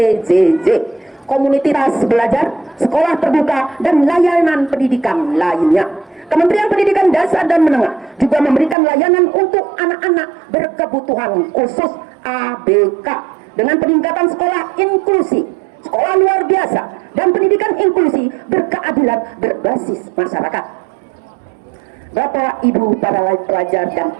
komunitas belajar, sekolah terbuka, dan layanan pendidikan lainnya. Kementerian Pendidikan Dasar dan Menengah juga memberikan layanan untuk anak-anak berkebutuhan khusus ABK dengan peningkatan sekolah inklusi, sekolah luar biasa, dan pendidikan inklusi berkeadilan berbasis masyarakat. Bapak, Ibu, para pelajar dan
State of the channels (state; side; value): drops out; left; at 8.8 s